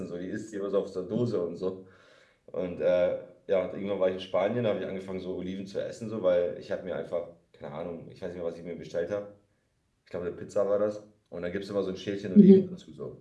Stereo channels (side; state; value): both; identical; correlation 1.00